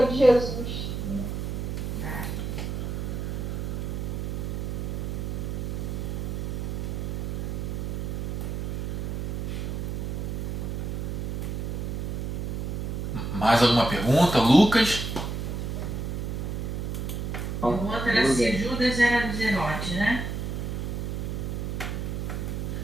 de Jesus. Mais alguma pergunta, Lucas? O outro era se Judas era do zelote, né?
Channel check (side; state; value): right; noise; hum, 2 dB below the sound